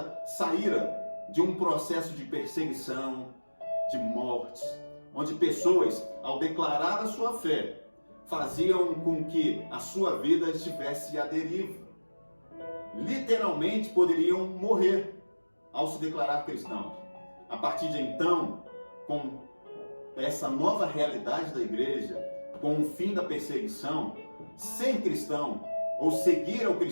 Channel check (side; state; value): both; inverted; correlation -1.00